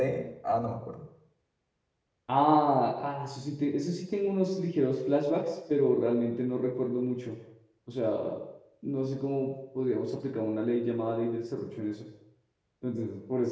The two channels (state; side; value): identical; both; correlation 1.00